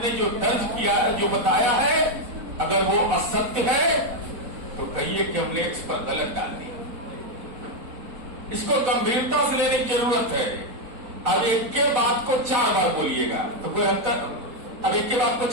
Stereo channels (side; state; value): left; late; 4.0 ms